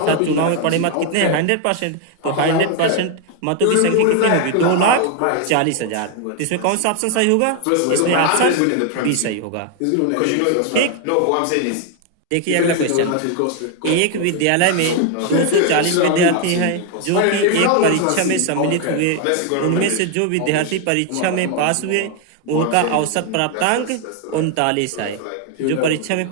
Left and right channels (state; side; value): different; both; correlation 0.01